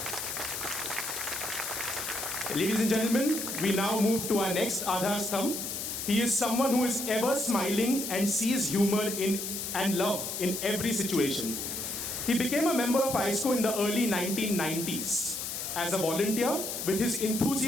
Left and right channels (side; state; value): left; noise; hiss, 4 dB below the sound